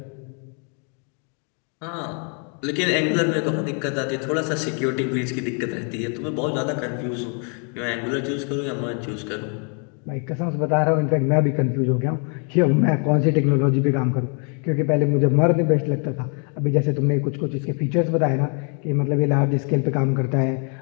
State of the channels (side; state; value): right; quieter; 39.4 dB